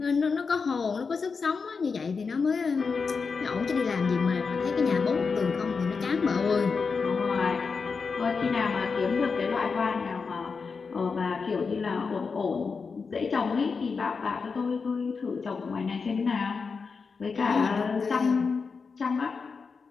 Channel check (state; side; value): quieter; right; 5.0 dB